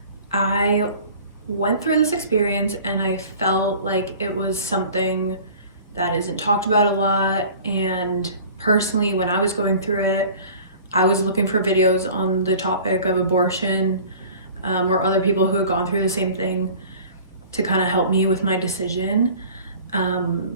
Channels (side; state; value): both; inverted; correlation -0.45